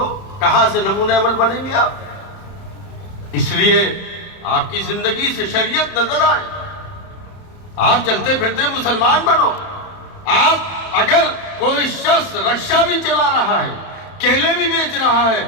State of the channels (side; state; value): right; late; 31 ms